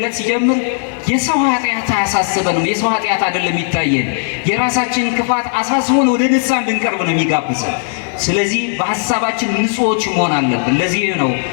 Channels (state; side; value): silent; right; digital silence